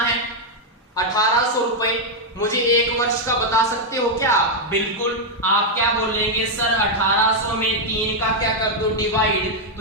1800 रुपए। मुझे 1 वर्ष का बता सकते हो क्या, बिल्कुल। आप क्या बोलेंगे, सर 1800 में 3 का क्या कर दो डिवाइड,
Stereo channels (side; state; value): both; normal; correlation 0.00